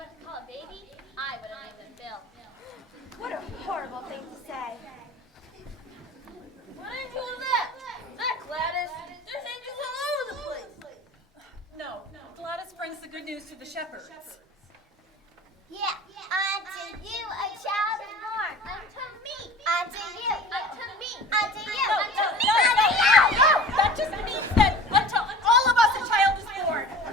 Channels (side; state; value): both; normal; correlation 0.40